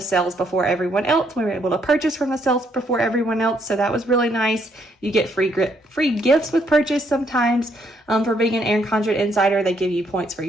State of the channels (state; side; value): normal; both; correlation 0.72